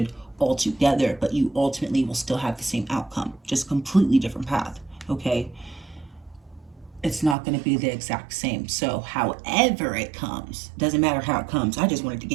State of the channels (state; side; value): drops out; left; at 7.4 s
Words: altogether, but you ultimately will still have the same outcome, just completely different path, okay? It's not going to be the exact same. So however it comes, doesn't matter how it comes, I just wanted to